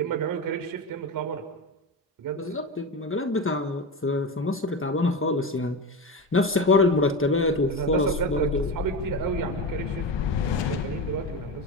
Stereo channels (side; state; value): both; normal; correlation 0.20